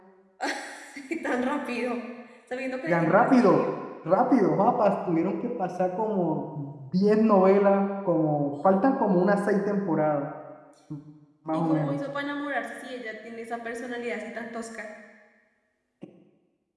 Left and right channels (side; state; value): both; identical; correlation 1.00